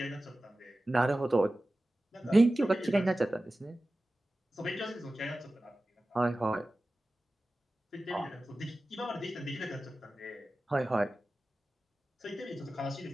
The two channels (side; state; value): both; normal; correlation 0.96